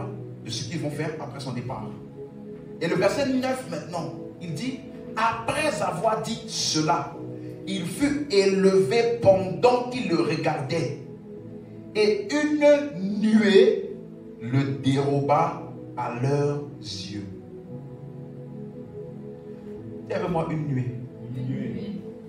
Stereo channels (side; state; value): both; identical; correlation 1.00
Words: de ce qu'ils vont faire après son départ. Et le verset 9 maintenant, il dit: après avoir dit cela, il fut élevé pendant qu'il le regardait, et une nuée le déroba à leurs yeux. Il y avait moi une nuée.